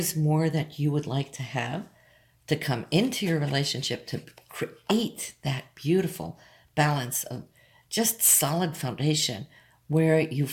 more that you would like to have to come into your relationship to create that beautiful balance of just solid foundation where you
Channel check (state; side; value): identical; both; correlation 1.00